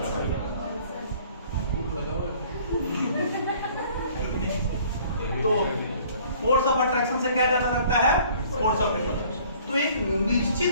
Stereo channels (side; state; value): both; inverted; correlation -0.55